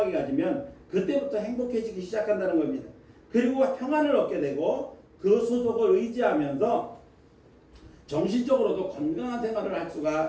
가지면 그때부터 행복해지기 시작한다는 겁니다. 그리고 평안을 얻게 되고 그 소속을 의지하면서 정신적으로도 건강한 생활을 할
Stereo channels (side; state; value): both; identical; correlation 1.00